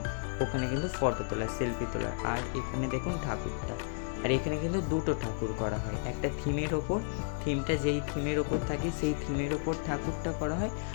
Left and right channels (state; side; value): silent; right; digital silence